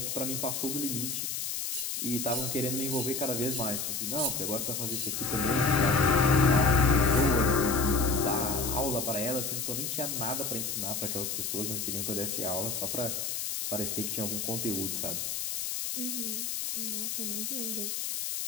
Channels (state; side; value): noise; left; hiss, 2 dB below the sound